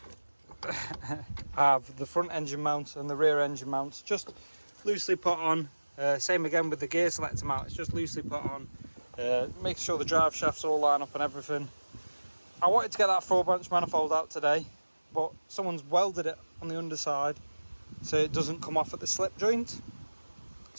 I have the front engine mount and the rear engine mounts just loosely put on. Same again with the gear selector mount, it's just loosely put on. Make sure the drive shafts all line up and everything. I wanted to get that 4-branch manifold out today, but someone's welded it on the underside so it doesn't come off at the slip joint.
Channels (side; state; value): both; inverted; correlation -1.00